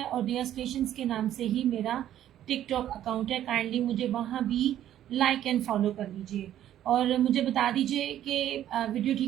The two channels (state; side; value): quieter; left; 11.7 dB